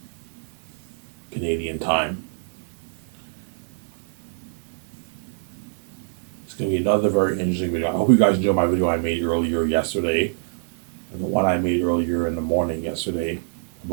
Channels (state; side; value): silent; left; digital silence